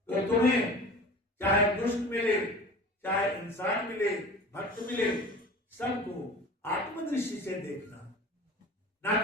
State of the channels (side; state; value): both; normal; correlation 0.39